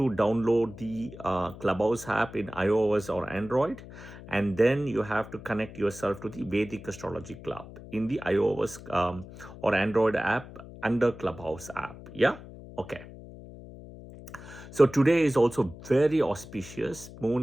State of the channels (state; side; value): noise; left; hum, 16 dB below the sound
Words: download the Clubhouse app in iOS or Android, and then you have to connect yourself to the Vedic Astrology Club in the iOS or Android app under Clubhouse app. Yeah. Okay. So today is also very auspicious.